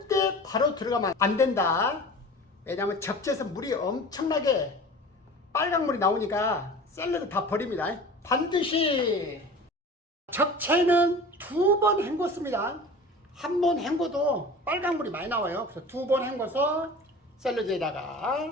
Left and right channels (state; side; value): normal; both; correlation 0.38